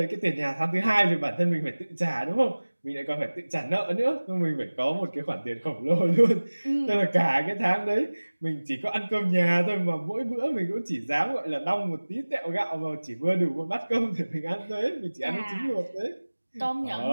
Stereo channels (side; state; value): both; inverted; correlation -1.00